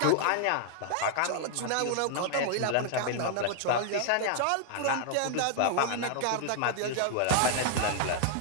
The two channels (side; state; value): both; different; correlation 0.00